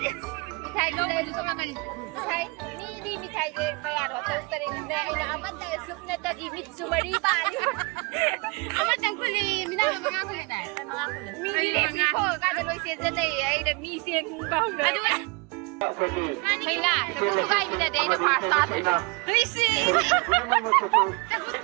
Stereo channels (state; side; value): quieter; left; 29.6 dB